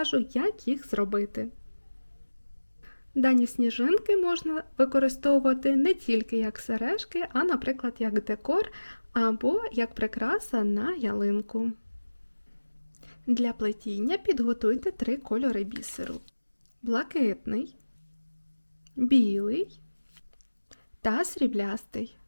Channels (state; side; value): inverted; both; correlation -1.00